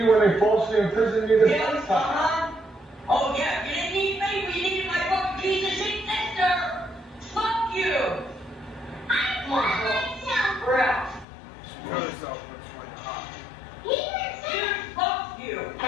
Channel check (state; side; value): drops out; right; at 11.2 s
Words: when they falsely imprisoned you this Yeah, first time. Oh yeah, you didn't need me, but you needed my fucking piece of shit sister. Fuck you. I Come on, cut girl. myself. We're out. She cut herself when she went to hospital. He didn't say Dude, fuck you. I